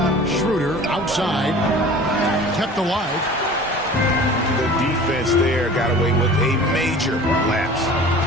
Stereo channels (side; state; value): both; normal; correlation 0.42